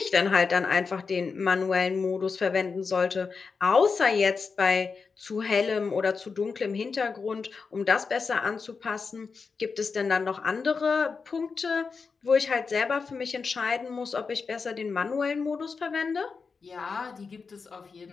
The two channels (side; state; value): right; quieter; 5.0 dB